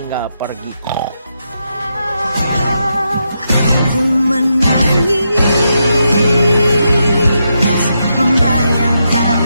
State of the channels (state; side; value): inverted; both; correlation -0.83